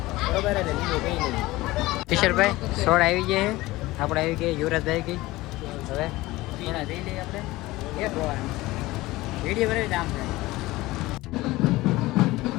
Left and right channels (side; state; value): right; quieter; 19.1 dB